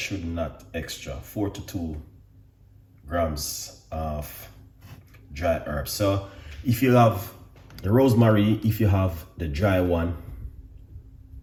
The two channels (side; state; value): both; identical; correlation 1.00